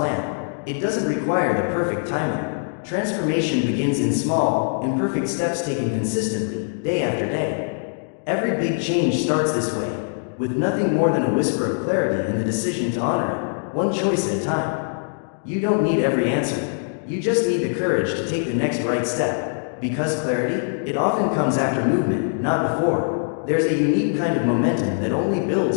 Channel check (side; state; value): right; silent; digital silence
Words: It doesn't require the perfect timing. Transformation begins in small, imperfect steps taken consistently, day after day. Every big change starts this way, with nothing more than a whisper of clarity and the decision to honor it, one choice at a time. You don't need every answer. You just need the courage to take the next right step. Because clarity, it often comes after movement, not before. There's a unique kind of momentum that only